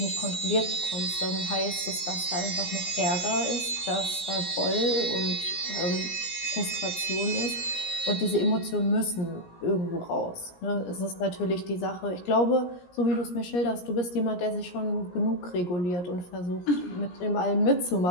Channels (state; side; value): late; right; 17 ms